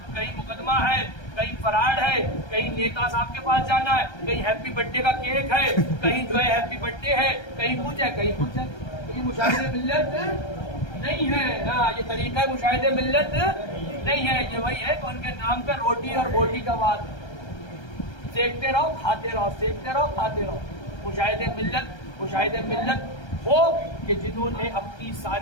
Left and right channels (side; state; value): right; late; 1.3 ms